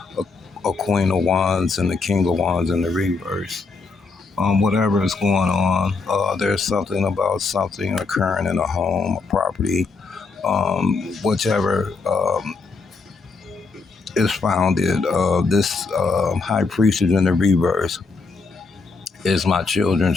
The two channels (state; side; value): quieter; right; 4.2 dB